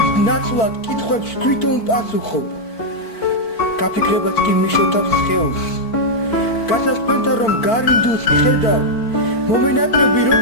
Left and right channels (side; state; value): right; late; 4.5 ms